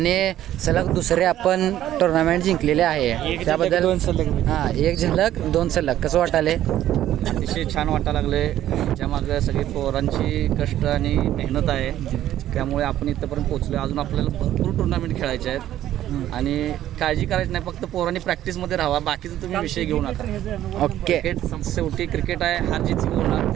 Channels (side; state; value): left; quieter; 12.5 dB